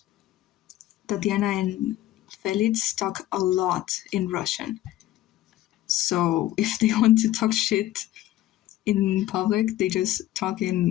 Tatiana and Felix talk a lot in Russian. So if they want to talk shit in public, they just talk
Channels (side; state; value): right; quieter; 14.4 dB